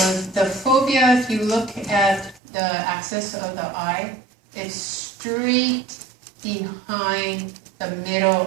the fovea, if you look at the axis of the eye, it's straight behind the middle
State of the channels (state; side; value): drops out; left; at 2.4 s